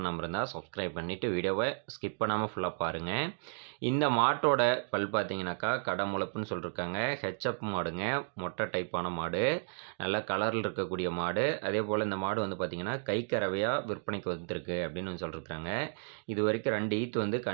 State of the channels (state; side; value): silent; left; digital silence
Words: இருந்தா, சப்ஸ்கிரைப் பண்ணிட்டு வீடியோவ ஸ்கிப் பண்ணாம ஃபுல்லா பாருங்க. இந்த மாட்டோட பல் பார்த்தீங்கன்னாக்கா, கடமுளப்புன்னு சொல்லிருக்காங்க. ஹெச்எப் மாடுங்க. மொட்டை டைப்பான மாடு. நல்ல கலர்ல இருக்கக்கூடிய மாடு. அதேபோல இந்த மாடு வந்து பார்த்தீங்கன்னா, கைக்கறவையா விற்பனைக்கு வந்திருக்கு அப்படின்னு சொல்லிருக்காங்க. இதுவரைக்கும் 2 ஈத்து வந்து